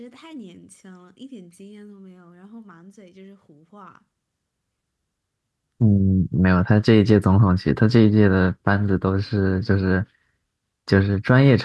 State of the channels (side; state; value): both; identical; correlation 1.00